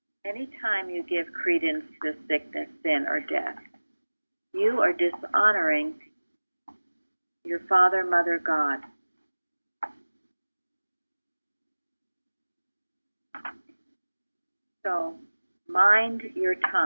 Anytime you give credence to sickness, sin, or death, you are dishonoring your Father, Mother, God. So, mind your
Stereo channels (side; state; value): both; inverted; correlation -1.00